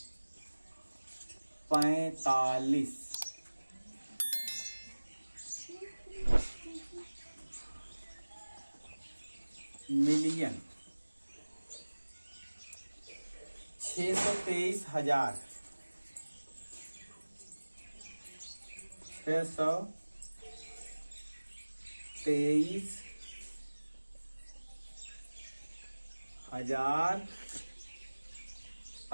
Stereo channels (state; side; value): inverted; both; correlation -1.00